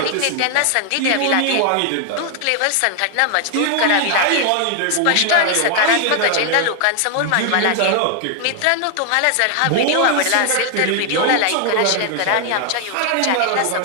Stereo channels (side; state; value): both; different; correlation 0.00